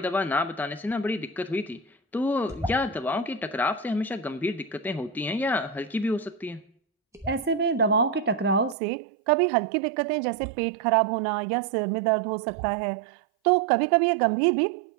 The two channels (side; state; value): left; drops out; at 8.8 s